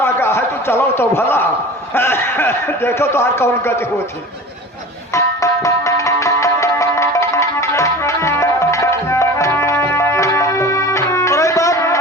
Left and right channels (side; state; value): both; normal; correlation 0.37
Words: गा है, तो चलो तो भला देखो तो हर कौन गति होती। और एक बात,